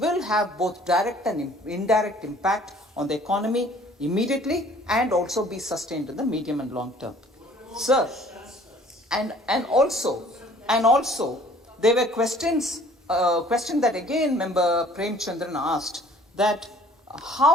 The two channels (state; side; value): normal; both; correlation 0.54